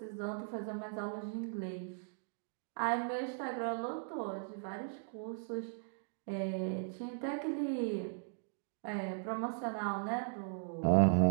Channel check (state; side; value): silent; left; digital silence